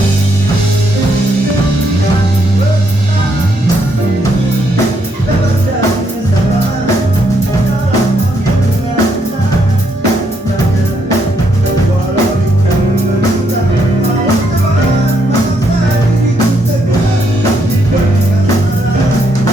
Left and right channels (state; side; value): normal; both; correlation 0.75